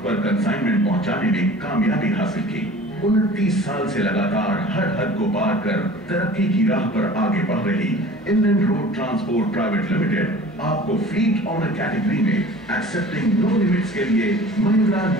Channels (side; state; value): both; normal; correlation 0.43